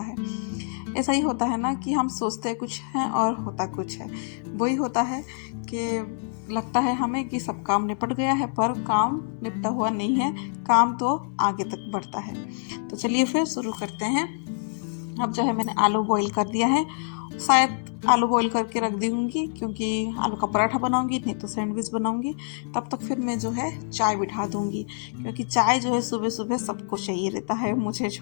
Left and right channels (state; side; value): silent; right; digital silence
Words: ऐसा ही होता है ना कि हम सोचते कुछ हैं और होता कुछ है। वही होता है कि लगता है हमें कि सब काम निपट गया है, पर काम निपटा हुआ नहीं है, काम तो आगे तक बढ़ता है। तो चलिए फिर शुरू करते हैं। अब जो है मैंने आलू बॉईल कर दिया है, शायद आलू बॉईल करके रख दूँगी क्योंकि आलू का पराठा बनाऊँगी, नहीं तो सैंडविच बनाऊँगी। तब तक फिर मैं जो है चाय बिठा दूँगी, क्योंकि चाय जो है सुबह सुबह सबको चाहिए रहता है, मुझे